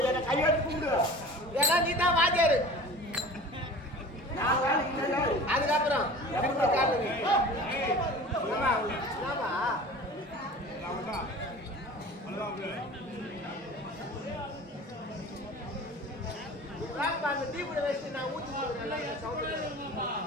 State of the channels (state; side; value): normal; both; correlation 0.40